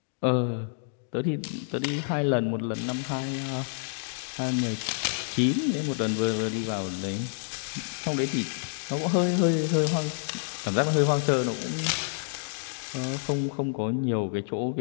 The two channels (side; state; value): right; silent; digital silence